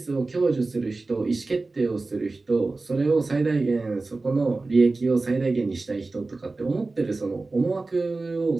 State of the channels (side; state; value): left; quieter; 3.5 dB